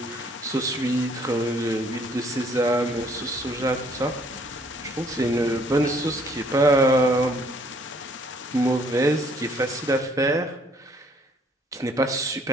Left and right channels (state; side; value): normal; both; correlation 0.62